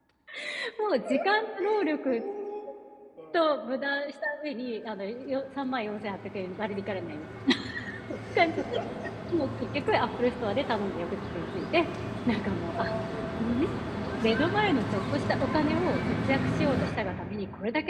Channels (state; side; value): identical; both; correlation 1.00